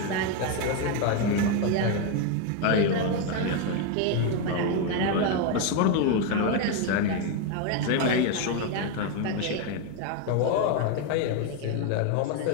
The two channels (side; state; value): both; different; correlation 0.01